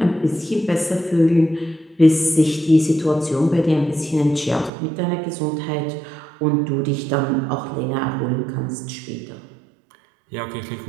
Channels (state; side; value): drops out; left; at 4.7 s